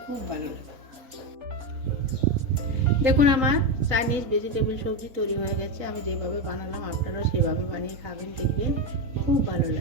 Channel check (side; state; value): left; late; 4.1 ms